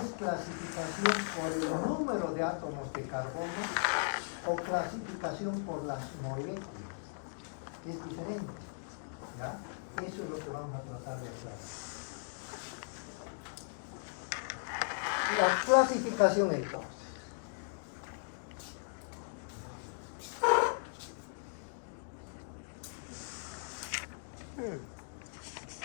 clasificación por el número de átomos de carbono o clasificación por las moléculas, que es diferente, ¿ya? Eso es lo que vamos a tratar de aclarar. La clasificación entonces.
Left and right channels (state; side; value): silent; right; digital silence